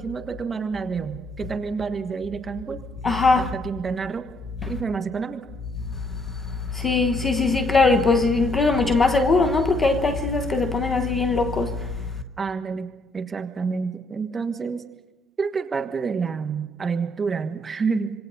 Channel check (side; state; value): both; normal; correlation 0.70